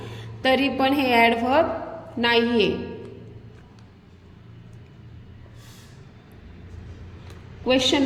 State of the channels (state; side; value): identical; both; correlation 1.00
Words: तरी पण हे ॲडव्हर्ब नाही आहे. Question